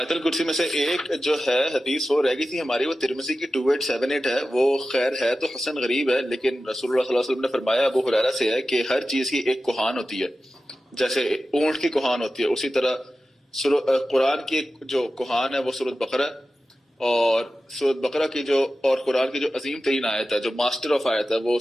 الکرسی میں سے ایک جو ہے حدیث وہ رہ گئی تھی ہماری، وہ ترمذی کی 2878 ہے. وہ خیر ہے تو حسن غریب ہے، لیکن رسول اللہ صلی اللہ علیہ وسلم نے فرمایا ابو ہریرہ سے ہے کہ ہر چیز کی ایک کوہان ہوتی ہے، جیسے اونٹ کی کوہان ہوتی ہے، اسی طرح قرآن کی جو کوہان ہے وہ سورۃ بقرہ، اور سورۃ بقرہ کی جو اور قرآن کی جو عظیم ترین آیت ہے، جو ماسٹر آف آیت ہے،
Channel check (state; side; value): normal; both; correlation 0.94